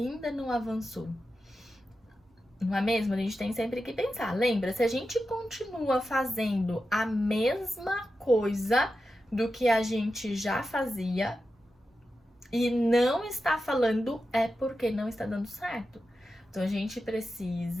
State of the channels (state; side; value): normal; both; correlation 0.91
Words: não avançou? Não é mesmo? A gente tem sempre que pensar. Lembra, se a gente continua fazendo a mesma coisa do que a gente já fazia e não está falando, é porque não está dando certo. Então a gente